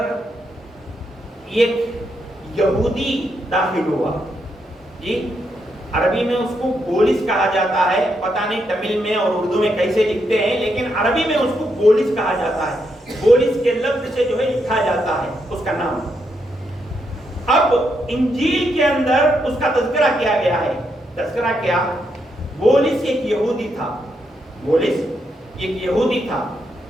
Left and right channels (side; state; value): both; normal; correlation 0.80